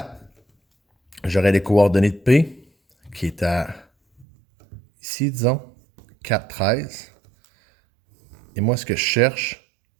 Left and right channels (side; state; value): left; drops out; at 4.2 s